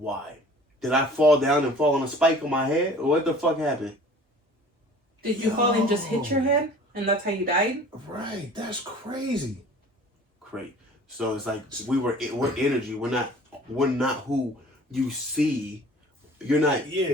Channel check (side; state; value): both; normal; correlation 0.47